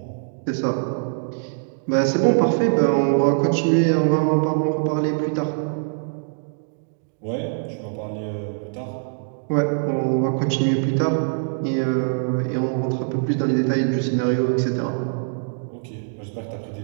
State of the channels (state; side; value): silent; left; digital silence